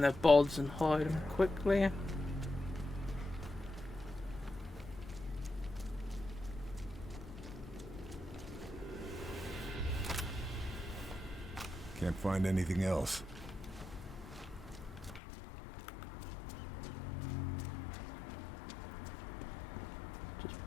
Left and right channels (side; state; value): right; drops out; at 15.2 s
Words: their bods and hide them quickly. Can't find anything else. Just